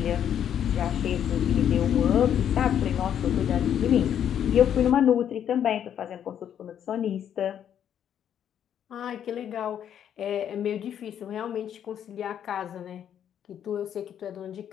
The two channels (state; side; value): quieter; right; 9.5 dB